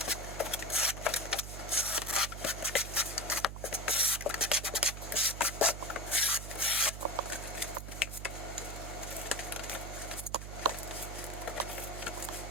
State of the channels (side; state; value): right; noise; hum, 8 dB below the sound